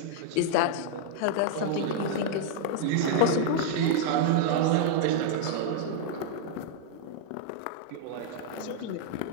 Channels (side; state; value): both; different; correlation -0.01